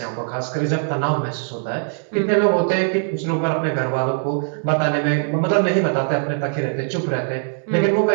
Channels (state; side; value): silent; left; 65 dB below the other